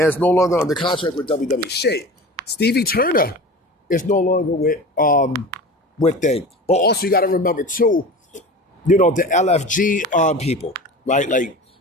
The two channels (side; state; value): both; normal; correlation 0.35